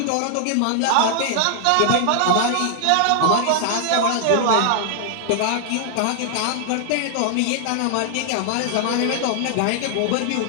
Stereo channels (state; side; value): different; both; correlation 0.00